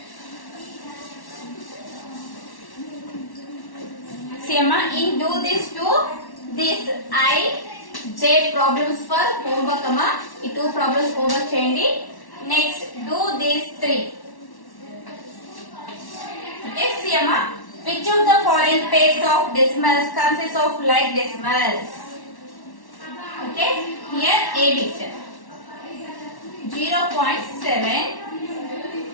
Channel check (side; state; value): right; late; 1.1 ms